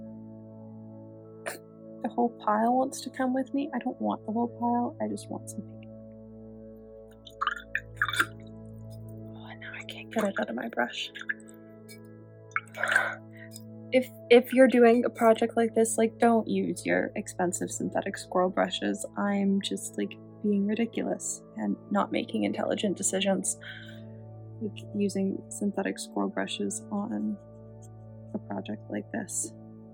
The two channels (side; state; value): both; identical; correlation 1.00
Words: the whole pile wants to come with me. I don't want the whole pile, I just want some paint. Oh, now I can't get it out of my brush. If you're doing a project like this, like, don't use your expensive synthetic squirrel brushes. I'm just, like, being ridiculous and not making intelligent decisions, like using synthetic squirrel brushes on a project like this.